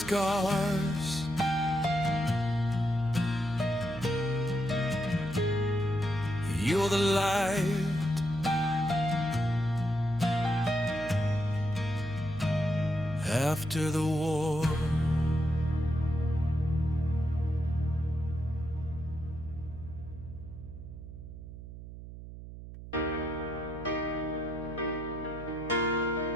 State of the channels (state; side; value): noise; right; hum, 12 dB below the sound